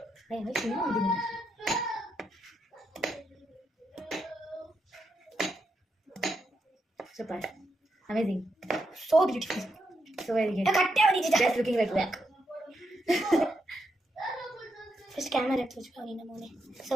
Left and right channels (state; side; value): normal; both; correlation 0.82